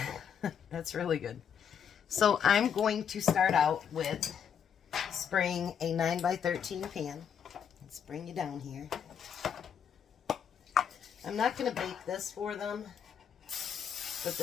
That's really good. So I'm going to start out with spraying a 9x13 pan. Let's bring you down here. I'm not going to bake this for them, but the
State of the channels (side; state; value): right; quieter; 8.0 dB